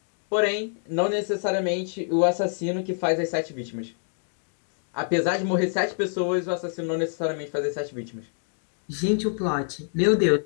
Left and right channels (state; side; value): silent; right; digital silence